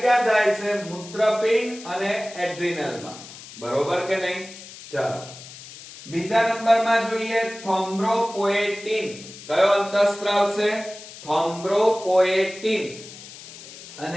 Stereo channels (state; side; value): noise; left; hiss, 16 dB below the sound